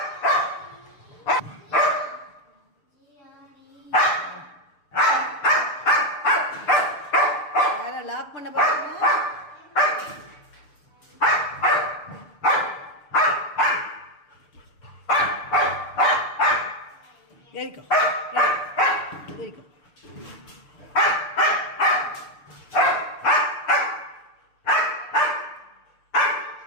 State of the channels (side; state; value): right; late; 6.8 ms